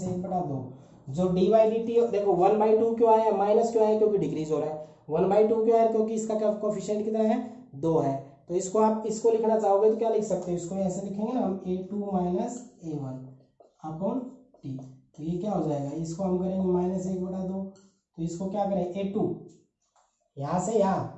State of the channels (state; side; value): identical; both; correlation 1.00